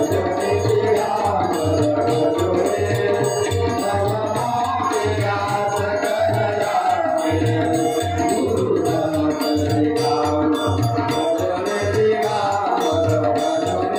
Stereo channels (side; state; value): both; identical; correlation 1.00